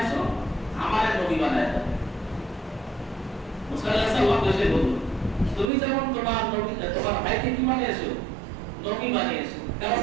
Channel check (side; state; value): left; drops out; at 5.7 s